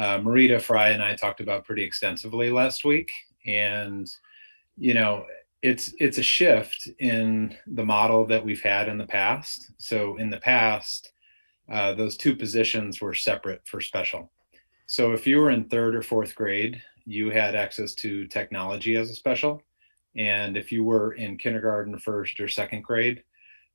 Fry, and I talked about pretty extensively last week. And, it's a shift in the model that we've had in the past. So in the past, those two positions were separate for special. So if you were in 3rd or 4th grade, you had access to technology as a special. And if you were in kindergarten, 1st or 2nd grade,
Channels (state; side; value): inverted; both; correlation -1.00